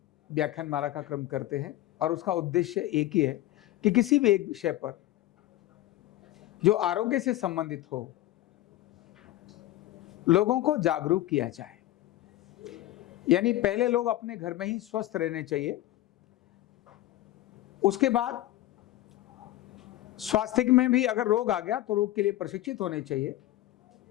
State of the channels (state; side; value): quieter; right; 15.3 dB